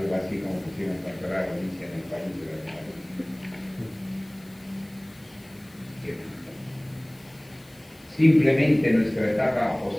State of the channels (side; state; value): left; noise; hiss, 28 dB below the sound